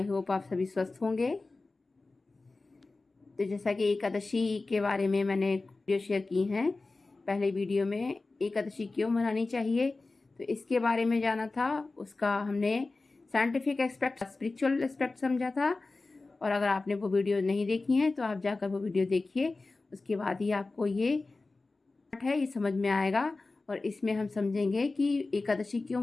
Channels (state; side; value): quieter; right; 3.5 dB